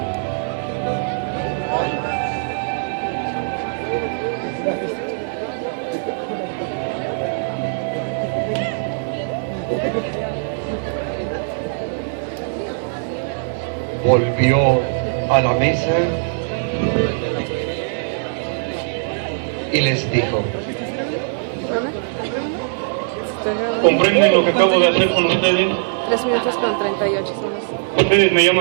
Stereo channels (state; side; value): silent; left; digital silence